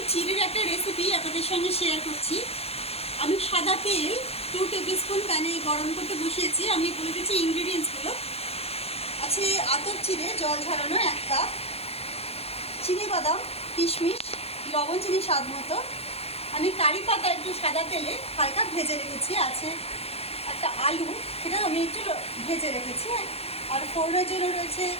চিড়ের একটা রেসিপি আপনাদের সঙ্গে শেয়ার করছি। আমি সাদা তেল 2 টেবিল স্পুন প্যানে গরম করতে বসিয়েছি। আমি বলে দিচ্ছি ইনগ্রিডিয়েন্টসগুলো। আছে আতপ চিড়ে জল ঝরানো 1 কাপ, চিনি বাদাম, কিশমিশ, লবণ, চিনি স্বাদ মতো। আমি কারি পাতা একটু সাদা তেলে হালকা ভেজে রেখেছি। আছে একটা আলু, সেটা আমি একটু ভেজে রেখেছি। আর ফোড়নের জন্য রয়েছে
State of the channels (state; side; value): late; right; 0.29 ms